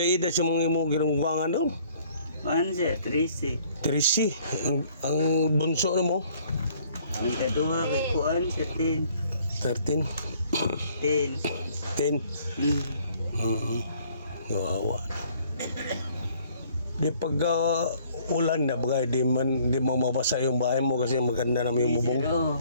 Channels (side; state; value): both; inverted; correlation -0.60